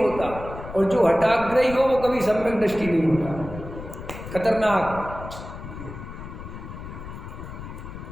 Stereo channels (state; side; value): noise; left; rumble, 11 dB below the sound